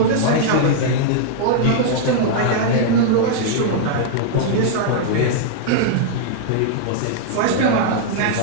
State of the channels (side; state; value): both; different; correlation -0.01